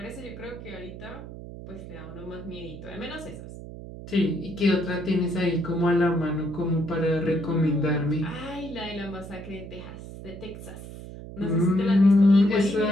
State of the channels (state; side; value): noise; right; hum, 12 dB below the sound